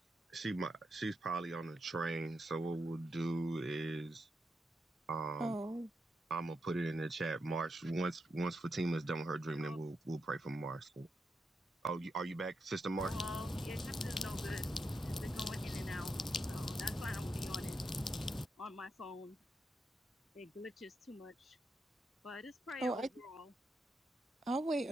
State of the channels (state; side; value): normal; both; correlation 0.84